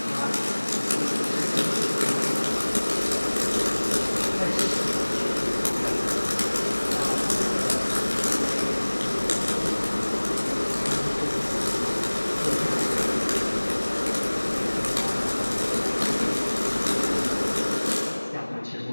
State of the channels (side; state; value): both; inverted; correlation -1.00